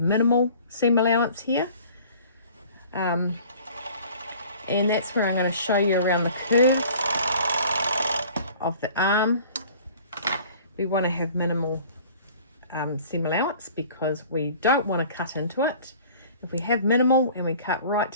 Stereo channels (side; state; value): both; inverted; correlation -0.48